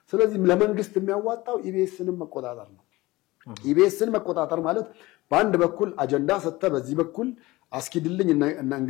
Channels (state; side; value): quieter; right; 19.9 dB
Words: ስለዚህ ለመንግስት የሚያዋጣው ኢቢኤስንም መቆጣጠር ነው። ኢቢኤስን መቆጣጠር ማለት በአንድ በኩል አጀንዳ ሰጥተ በዚህ በኩል አስኪድልኝ